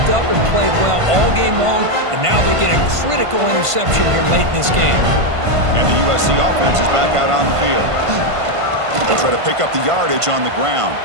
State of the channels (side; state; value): left; late; 1.5 ms